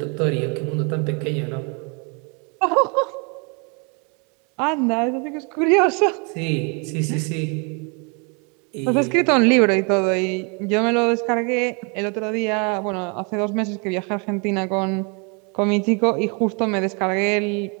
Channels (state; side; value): quieter; left; 34.0 dB